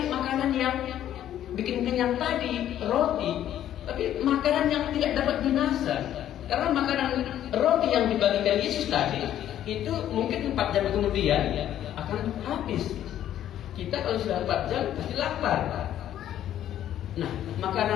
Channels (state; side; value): quieter; right; 11.5 dB